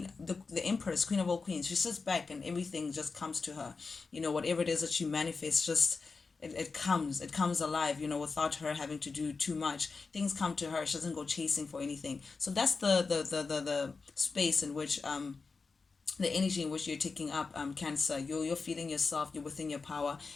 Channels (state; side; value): quieter; right; 4.4 dB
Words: the Empress, Queen of all queens, she sits back and everything just comes to her. Whatever it is that you manifest, just it comes alive, without her having to do too much. Things come to her. She doesn't go chasing for anything. So that's the space in which the energy in which you're taking up, Cancer. You're feeling yourself, you're within your power.